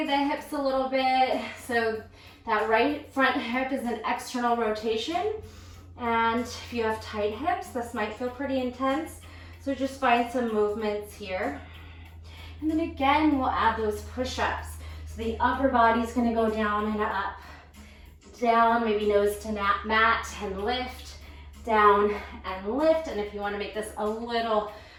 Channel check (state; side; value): identical; both; correlation 1.00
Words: the hips a little bit, so that right front hip is an external rotation, and if you have tight hips, this might feel pretty intense, so just find some movements here. And then again, we'll add those push-ups. So the upper body's gonna go down and up. Down, maybe nose to mat and lift, down and lift. And if you want to make this a little